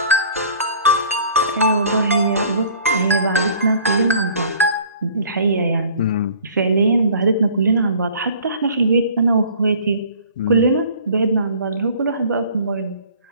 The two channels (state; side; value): inverted; both; correlation -0.50